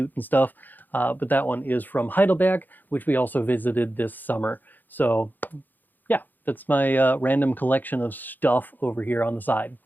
and stuff. But that one is from Heidelberg, which we also visited this summer. So yeah, that's my random collection of stuff over here on the side.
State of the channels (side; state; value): right; late; 0.087 ms